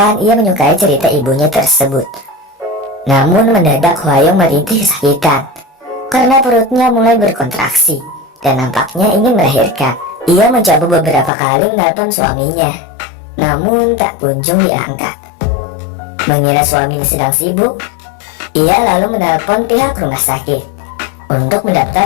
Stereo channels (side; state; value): right; drops out; at 11.3 s